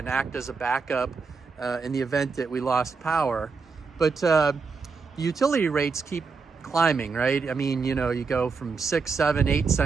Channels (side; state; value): left; quieter; 4.8 dB